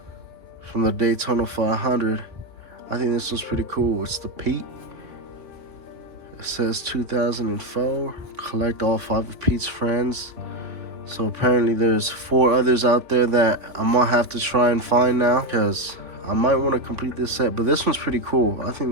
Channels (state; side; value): late; left; 3.6 ms